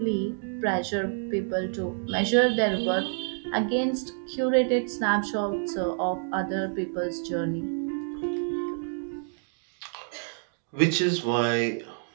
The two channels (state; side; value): silent; left; digital silence